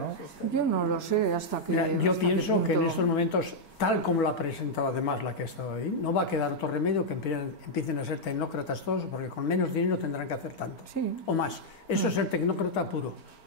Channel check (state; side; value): late; right; 4.4 ms